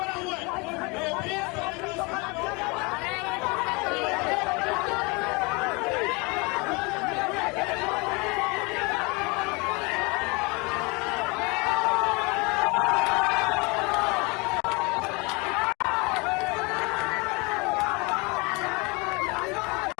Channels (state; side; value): quieter; right; 28.1 dB